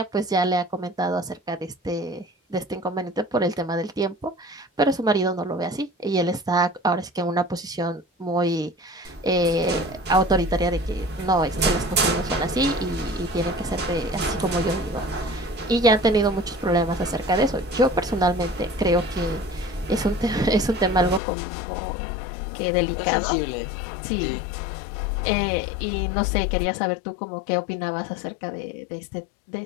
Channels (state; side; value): drops out; right; at 21.2 s